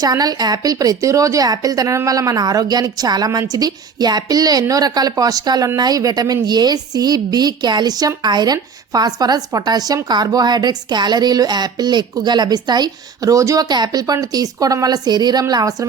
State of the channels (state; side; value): quieter; left; 5.8 dB